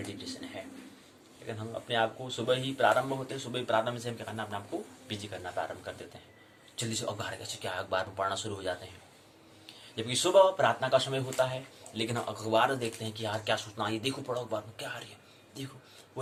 है। लेकिन हम अपने आप को सुबह ही प्रारंभ होते हैं, सुबह ही प्रारंभ से हम क्या करना, अपने आप को बिजी करना प्रारंभ कर देते हैं। जल्दी से अखबार कैसे क्या अखबार में पढ़ना शुरू हो जाते हैं, जबकि सुबह प्रार्थना का समय होता है। लेकिन हम अखबार देखते हैं कि यार क्या सूचना, ये देखो पढ़ो अखबार में क्या आ रही है, देखो।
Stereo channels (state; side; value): identical; both; correlation 1.00